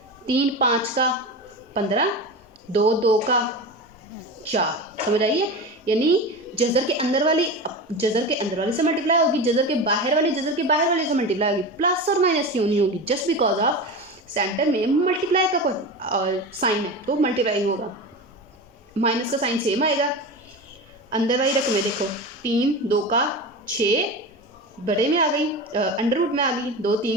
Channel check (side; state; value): both; normal; correlation 0.26